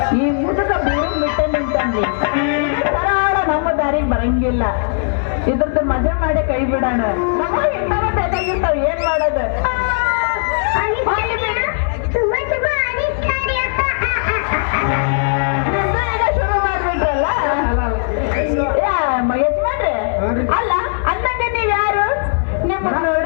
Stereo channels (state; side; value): silent; right; 63 dB below the other